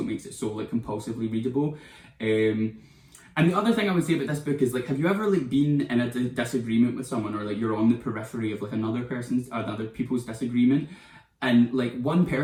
it makes it so like compulsively readable. And the other thing I would say about this book is like, have you ever like been in a disagreement with someone, or like you're on the periphery of like other people's disagreement, and like one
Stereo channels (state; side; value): identical; both; correlation 1.00